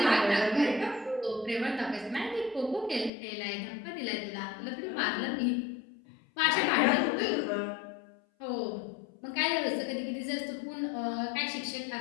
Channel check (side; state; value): right; drops out; at 3.1 s